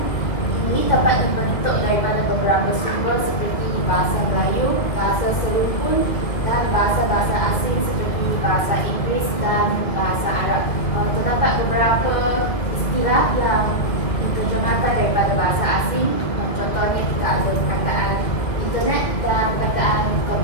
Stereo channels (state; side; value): late; right; 2.2 ms